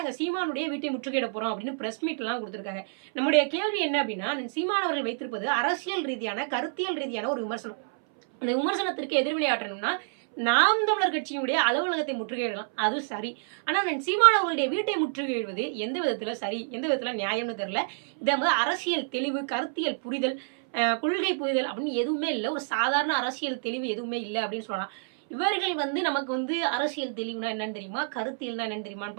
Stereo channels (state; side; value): silent; left; 59 dB below the other